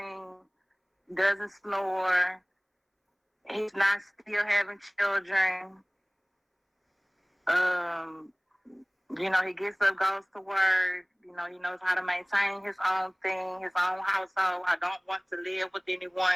doesn't snore. He's not still having children. He gets up, goes to work. He knows how to maintain his own thing, his own household. I don't want to live with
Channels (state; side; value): identical; both; correlation 1.00